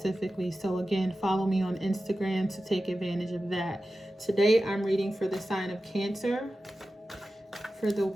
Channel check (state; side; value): normal; both; correlation 0.94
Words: So again, follow me on Instagram to take advantage of that. Today I'm reading for the sign of Cancer for the